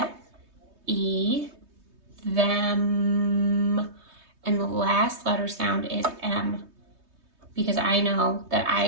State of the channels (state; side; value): late; left; 3.2 ms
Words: E, them. And the last letter sound is M, because I know that